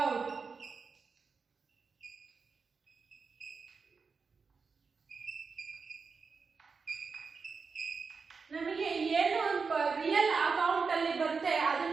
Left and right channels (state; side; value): quieter; left; 5.0 dB